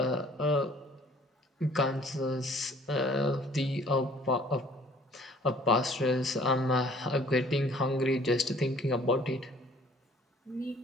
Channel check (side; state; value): both; normal; correlation 0.55